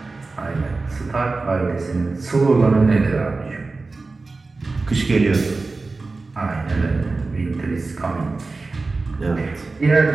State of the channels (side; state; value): left; quieter; 3.7 dB